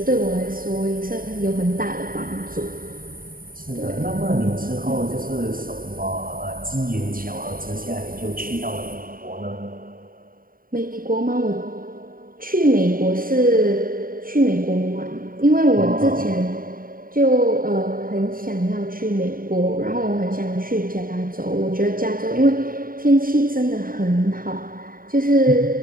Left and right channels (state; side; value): late; left; 0.41 ms